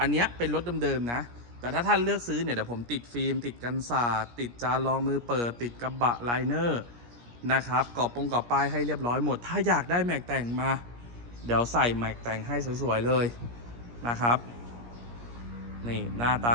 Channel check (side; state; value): left; late; 17 ms